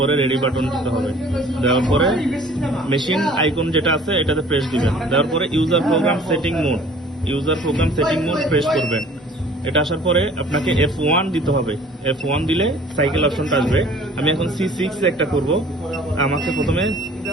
রেডি বাটন দিতে হবে। দেওয়ার পরে মেশিন আইকন যেটা আছে এটাতে প্রেস দিবেন। দেওয়ার পরে user program setting mode press করবেন। এটা আসার পরে আপনাকে F1 দিতে হবে। F1 দিলে সাইকেল অপশনটা আসবে। আমি এখন C6 একটা করব। আমাকে প্রথমে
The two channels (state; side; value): normal; both; correlation 0.51